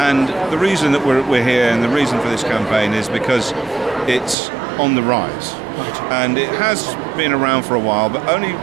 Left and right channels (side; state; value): left; drops out; at 4.4 s